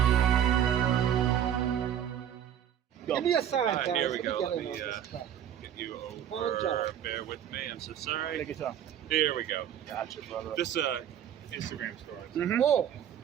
Give me a sign, guys. Here we Let me go. get Let in me on this truck. get you Good job. over. Bear with me. I'm so sorry. Take your time. Here we go. Gotcha, brother. This Instagram story. Mm-hmm. Oh,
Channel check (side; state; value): left; quieter; 9.8 dB